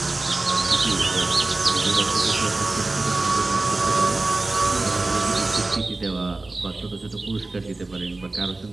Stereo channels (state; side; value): quieter; left; 3.2 dB